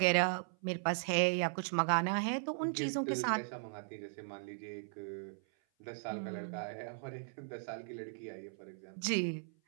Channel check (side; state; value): left; silent; 53 dB below the other